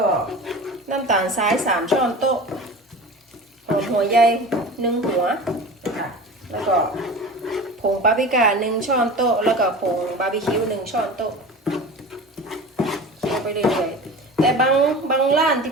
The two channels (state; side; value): normal; both; correlation 0.34